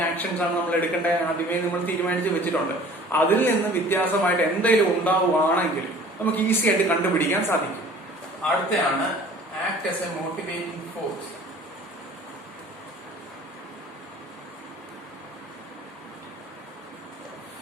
ആക്ഷൻസ് ആണ് നമ്മൾ എടുക്കേണ്ടത് ആദ്യമേ നമ്മൾ തീരുമാനിച്ച് വെച്ചിട്ടുണ്ട്. അതിൽ നിന്ന് വ്യത്യാസമായിട്ട് എന്തെങ്കിലും ഉണ്ടാവുകയാണെങ്കിൽ നമുക്ക് ഈസി ആയിട്ട് കണ്ടുപിടിക്കാൻ സാധിക്കും. അടുത്തയാണ് act as a motivating force.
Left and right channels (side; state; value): both; normal; correlation 0.48